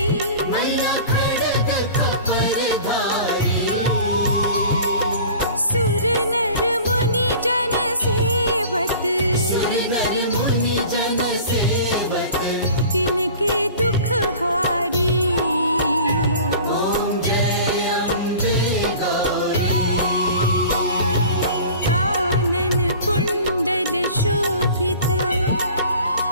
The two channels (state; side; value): inverted; both; correlation -0.42